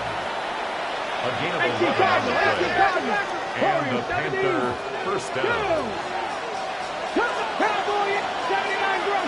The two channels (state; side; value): identical; both; correlation 1.00